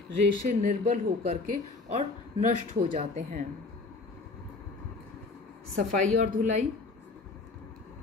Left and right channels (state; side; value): quieter; right; 3.6 dB